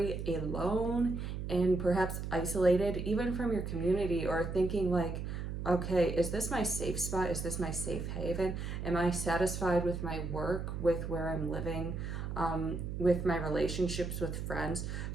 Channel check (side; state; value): right; noise; hum, 5 dB below the sound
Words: alone and perhaps isolated even from your community, or thinking like, okay, is this my safe spot? Is this my safe haven? Am I satisfied with my work, with where I'm living, with my relationships with friends?